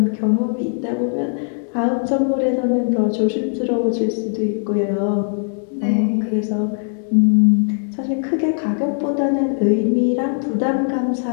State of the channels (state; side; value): silent; right; digital silence